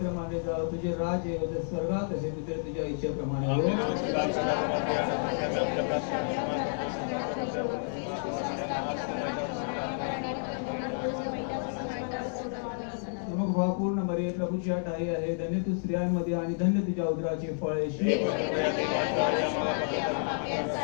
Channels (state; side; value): silent; right; digital silence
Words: मानले जावं, तुझे राज्य येवो, जसे स्वर्गात असेल तिथे तुझ्या इच्छेप्रमाणे हो. मग भावपूर्ण मरिये प्रभूची आठ आई आहे, धन्य तू स्त्रियांमध्ये आणि धन्य तुझ्या उदराचे फळ येशू.